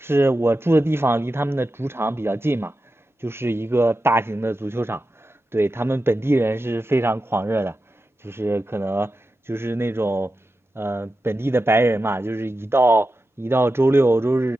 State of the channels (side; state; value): both; normal; correlation 0.91